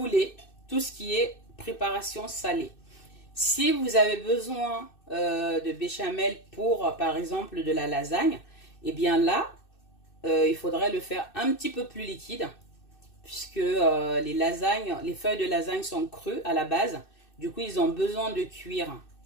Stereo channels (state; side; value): late; right; 2.6 ms